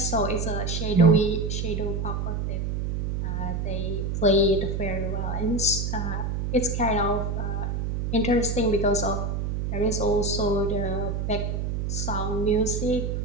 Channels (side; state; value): right; noise; hum, 1 dB below the sound